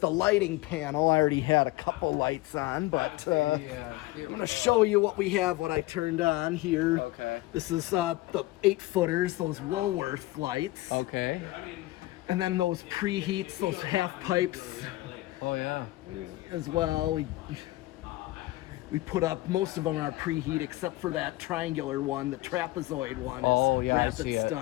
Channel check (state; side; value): quieter; right; 18.7 dB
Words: lighting panel. I already had a couple lights on, but I'm gonna show you what we have. What I turned on here. Okay. This is the 8-footers, those Woolworth lights. Okay. And then those preheats, those half pipes. Oh yeah. As well. We put up most of them are preheat except for that triangular one, the trapezoid one. Oh is yeah, rapid I see it.